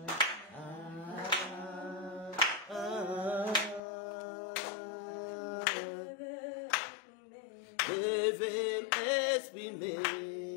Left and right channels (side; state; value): right; drops out; at 3.8 s